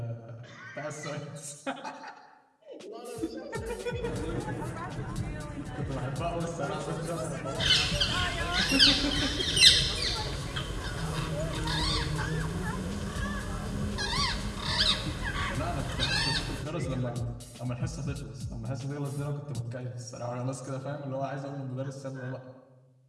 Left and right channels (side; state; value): both; identical; correlation 1.00